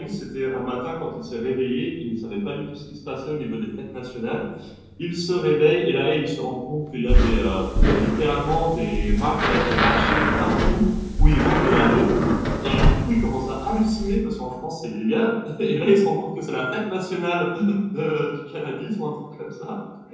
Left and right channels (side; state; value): both; identical; correlation 1.00